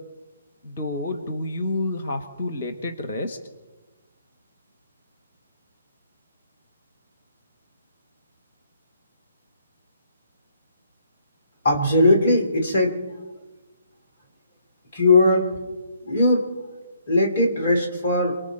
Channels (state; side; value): inverted; both; correlation -0.68